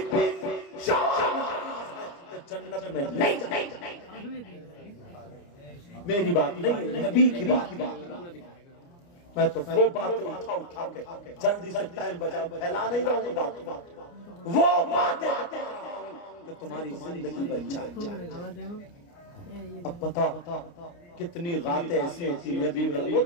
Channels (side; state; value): right; late; 29 ms